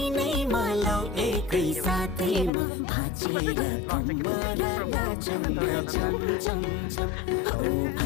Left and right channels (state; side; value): drops out; right; at 2.5 s